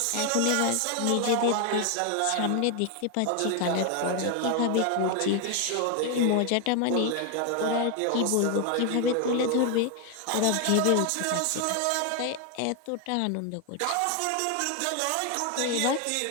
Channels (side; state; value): both; different; correlation 0.01